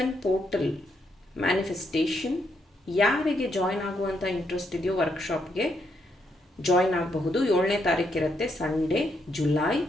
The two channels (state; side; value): normal; both; correlation 0.77